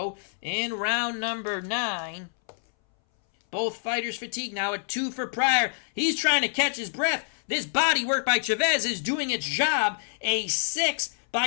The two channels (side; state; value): right; silent; 60 dB below the other